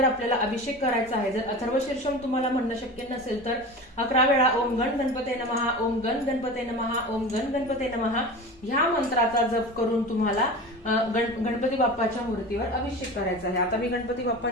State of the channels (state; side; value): normal; both; correlation 0.32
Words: आपल्याला अभिषेक करायचा आहे. जर अथर्व शीर्षम तुम्हाला म्हणणं शक्य नसेल तर 11 वेळा ओम गण गणपते नमः, ओम गण गणपते नमः, ओम गण गणपते नमः ह्या मंत्राचा जप करून तुम्हाला गणपती बाप्पाच्या मूर्तीवर अभिषेक करायचा आहे. आता मी गणपती